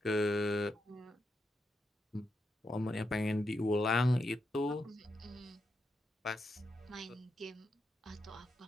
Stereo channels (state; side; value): normal; both; correlation 0.84